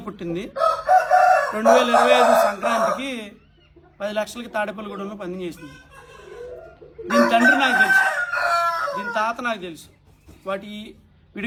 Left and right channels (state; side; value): identical; both; correlation 1.00